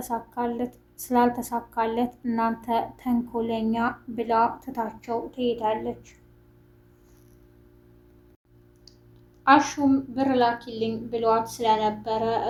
ስላልተሳካለት እናንተ ተንኮለኛ ብላ ትታቸው ትሄዳለች። አሹም ብር ላኪልኝ ብሏት ስለነበረ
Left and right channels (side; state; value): both; identical; correlation 1.00